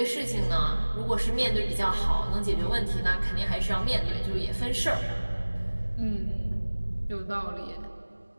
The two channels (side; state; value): both; inverted; correlation -1.00